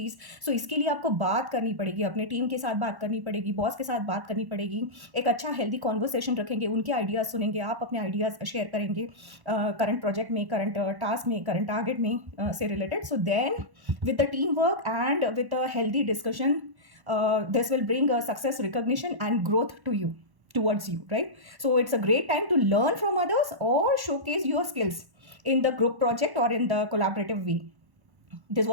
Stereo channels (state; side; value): late; left; 1.1 ms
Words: So इसके लिए आपको बात करनी पड़ेगी, अपने टीम के साथ बात करनी पड़ेगी, बॉस के साथ बात करनी पड़ेगी, एक अच्छा हेल्दी कॉन्वर्सेशन रखेंगे, उनके आइडियाज़ सुनेंगे, आप अपने आइडियाज़ शेयर करेंगे करंट प्रोजेक्ट में, करंट टास्क में, करंट टारगेट में से related. So then with the team work and with a healthy discussion, this will bring a success, recognition and growth to you, towards you, right? So it's a great time to learn from others or showcase your skills in the group project or in the collaborative way. This